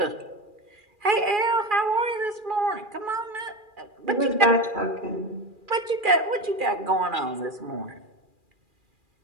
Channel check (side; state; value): left; late; 2.4 ms